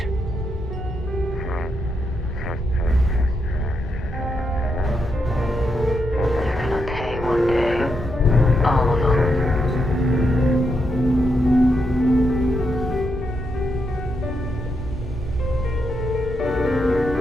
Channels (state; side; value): normal; both; correlation 0.81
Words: They're gonna pay one day. All of them.